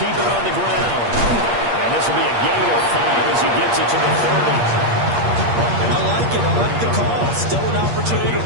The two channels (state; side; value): late; left; 8.5 ms